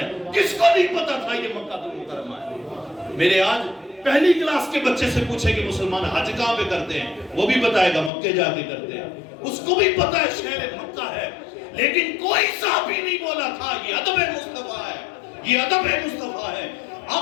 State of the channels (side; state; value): right; drops out; at 8.1 s